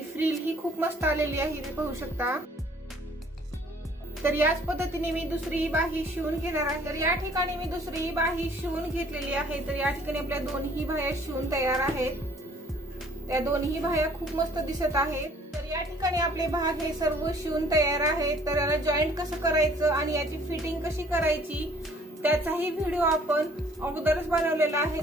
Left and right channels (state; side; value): normal; both; correlation 0.57